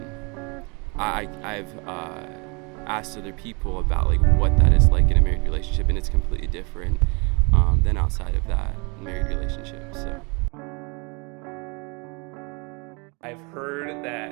I've asked other people about like what that is like in a married relationship, and it's completely different than outside of that married relationship. So I've heard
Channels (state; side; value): quieter; left; 32.5 dB